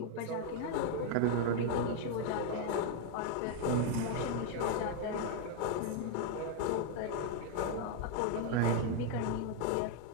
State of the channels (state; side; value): different; both; correlation 0.00